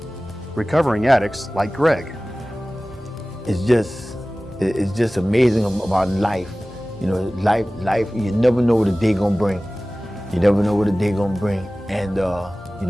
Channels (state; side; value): normal; both; correlation 0.97